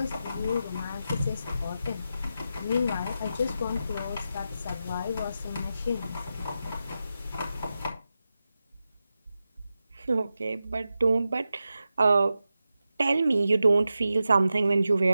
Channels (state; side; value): inverted; both; correlation -0.90